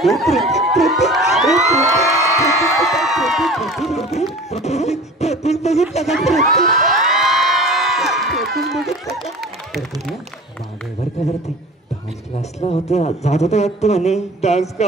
हे प्रतीक बघितलं का मागेवर का वरती डान्स क्लासला होतं जात होतं वाटतं म्हणे डान्स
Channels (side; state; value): both; normal; correlation 0.40